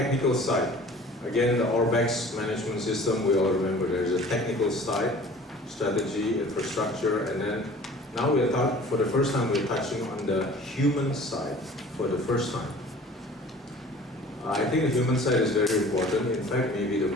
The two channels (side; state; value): both; normal; correlation 0.46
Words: side. Again, the ORBEX management system, we all remember there's a technical side, strategy, infrastructure, and then now for the first time we're touching on the human side for the first time. I think the human side is very important, in fact maybe the